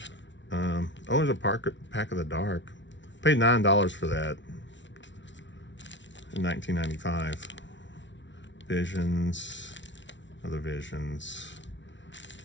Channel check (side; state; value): right; late; 0.54 ms